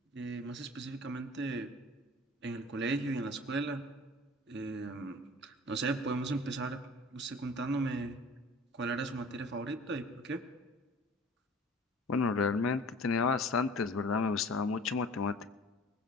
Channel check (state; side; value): normal; both; correlation 0.45